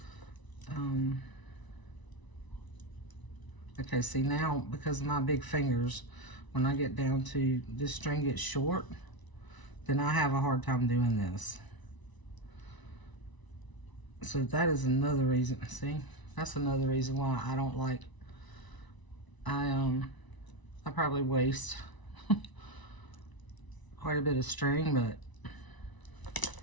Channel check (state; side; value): late; right; 1.0 ms